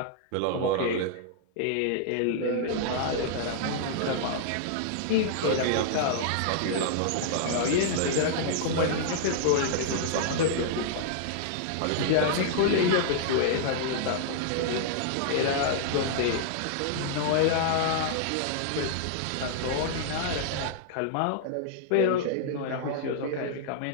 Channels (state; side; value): different; both; correlation -0.01